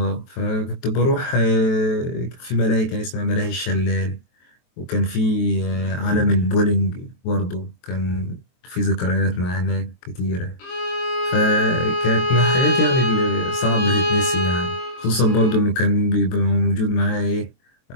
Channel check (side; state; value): right; late; 23 ms